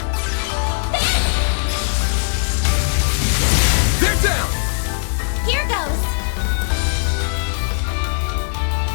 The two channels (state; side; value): silent; right; 65 dB below the other